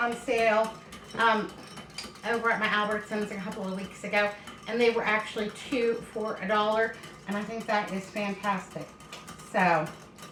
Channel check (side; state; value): both; identical; correlation 1.00